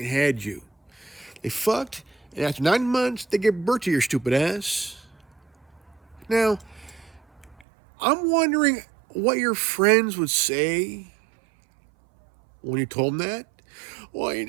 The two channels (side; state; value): left; drops out; at 7.7 s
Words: had you. They fucked, and after 9 months, they give birth to your stupid ass. Now, I'm wondering what your friends would say when you told them that. Well, you